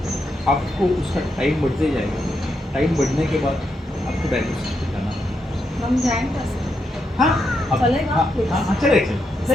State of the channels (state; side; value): normal; both; correlation 0.82